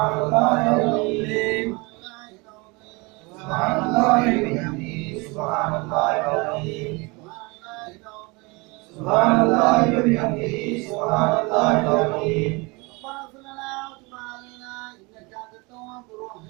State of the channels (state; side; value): quieter; left; 26.9 dB